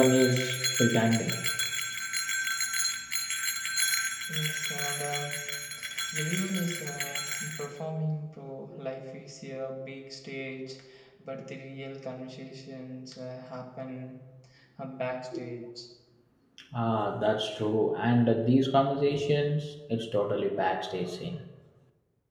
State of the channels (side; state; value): both; identical; correlation 1.00